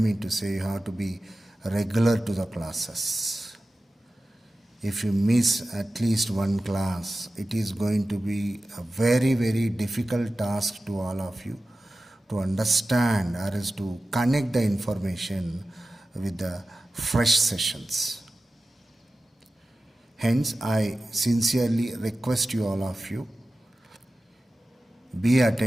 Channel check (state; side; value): normal; both; correlation 0.95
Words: to say, you have to be regular to the classes. If you miss at least one class, it is going to be a very, very difficult task to all of you to understand or is to connect the information with the fresh sessions. Hence, I sincerely request you, all of you, be